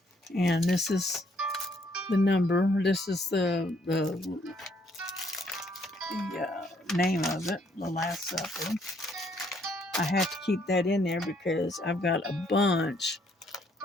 And this is the number. This is the name of it, The Last Supper. I have to keep that in there because I've got a bunch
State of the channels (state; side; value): normal; both; correlation 0.68